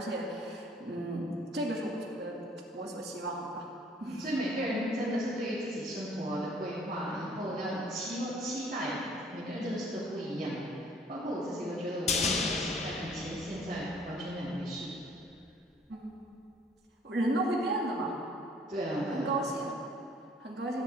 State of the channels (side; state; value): both; normal; correlation 0.57